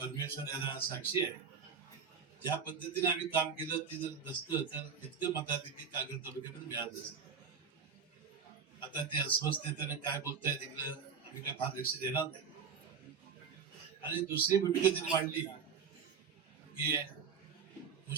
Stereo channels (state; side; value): quieter; left; 6.3 dB